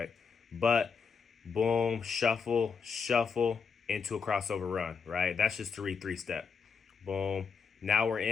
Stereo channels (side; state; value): right; quieter; 5.7 dB